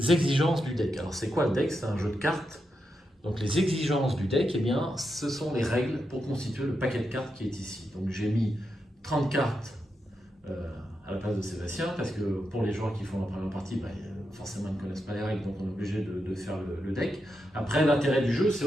du deck. Alors c'est quoi le deck? C'est un jeu de cartes. Donc les exigences du deck, eh bien, ce sont les règles pour constituer le paquet de cartes qui est ici. Donc j'ai mis 30 cartes à la place de Sébastien, parce que pour les joueurs qui font la première partie, forcément ils ne connaissent pas les règles, donc on est obligé de faire le deck. Après, l'intérêt du jeu, c'est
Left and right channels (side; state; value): both; normal; correlation 0.85